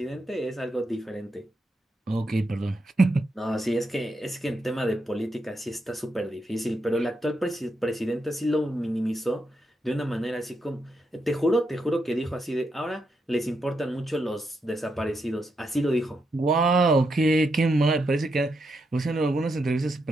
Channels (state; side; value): normal; both; correlation 0.82